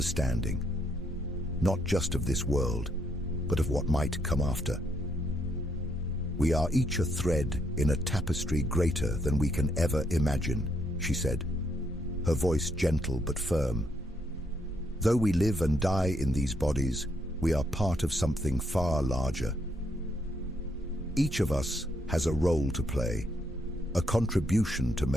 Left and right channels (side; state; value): both; normal; correlation 0.75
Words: not just of this world, but of what might come after. "We are each a thread in a tapestry greater than we can ever imagine," she said, her voice gentle but firm. "Though we live and die in these bodies, we are part of something far larger. Each of us has a role to play, a contribution to